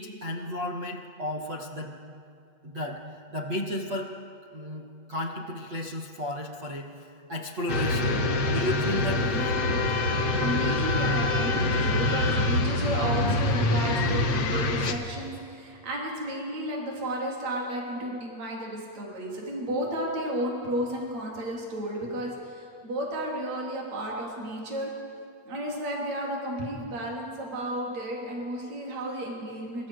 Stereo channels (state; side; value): late; left; 8.5 ms